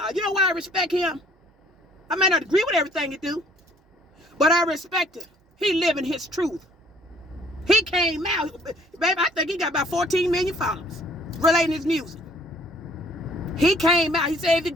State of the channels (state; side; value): normal; both; correlation 0.59